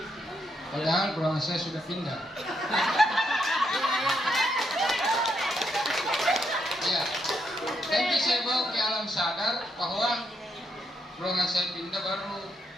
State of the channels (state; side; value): normal; both; correlation 0.78